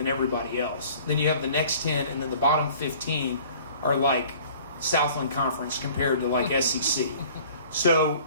everybody else. Then you have the next 10, and then the bottom 15 are like Southland Conference compared to like SEC. So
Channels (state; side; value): inverted; both; correlation -0.50